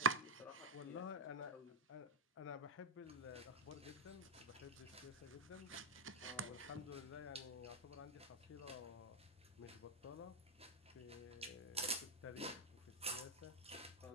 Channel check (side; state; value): both; normal; correlation 0.02